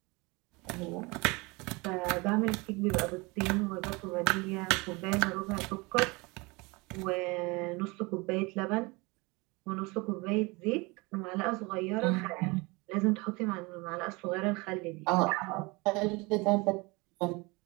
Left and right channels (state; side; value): quieter; left; 25.7 dB